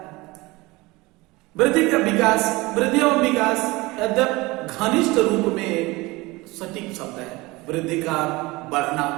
वृद्धि का विकास, वृद्धि और विकास यद्यप घनिष्ठ रूप में सटीक शब्द है। वृद्धि का बढ़ना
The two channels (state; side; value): quieter; left; 22.1 dB